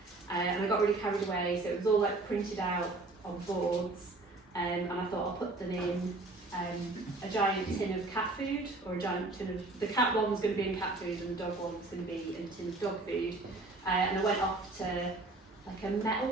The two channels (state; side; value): quieter; left; 3.0 dB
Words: And I got really carried away, so it was all like printed out on boards, and I thought I'll put them in a giant tin of cat food, or a giant tin of, the cat one was going to be in cat food and the dog one was going to be in a tin of dog food. And I went off to like a